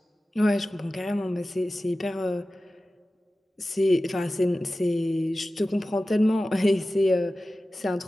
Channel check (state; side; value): normal; both; correlation 0.95